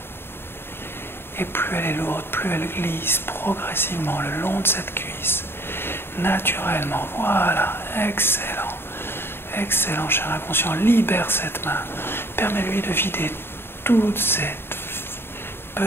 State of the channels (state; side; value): late; right; 0.11 ms